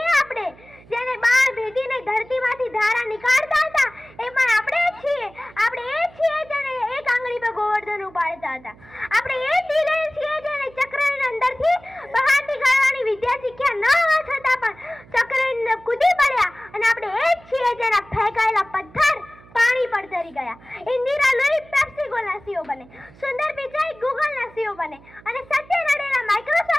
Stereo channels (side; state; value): right; noise; hum, 24 dB below the sound